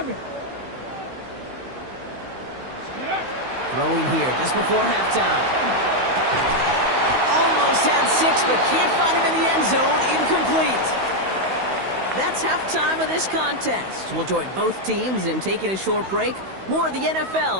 Throwing here just before halftime. Almost had 6, but can't find him in the end zone. Incomplete. That's halftime of this contest. We'll join both teams in taking a short break. More of the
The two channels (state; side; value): late; left; 16 ms